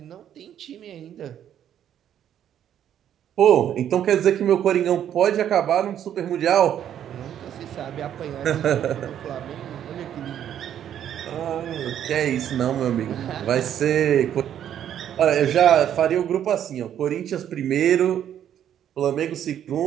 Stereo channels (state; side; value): quieter; left; 10.1 dB